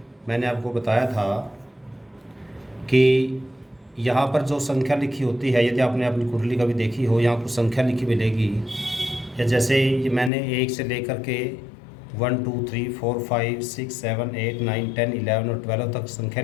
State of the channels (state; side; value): drops out; right; at 10.3 s